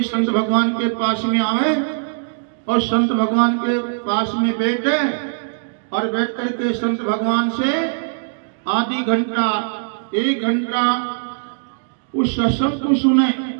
संत भगवान के पास में आए और संत भगवान के पास में बैठे और बैठ करके संत भगवान से आधी घंटा 1 घंटा उस सत्संग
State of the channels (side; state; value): left; silent; digital silence